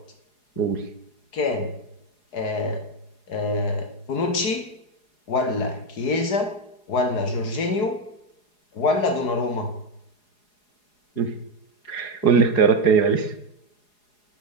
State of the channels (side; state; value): right; late; 4.8 ms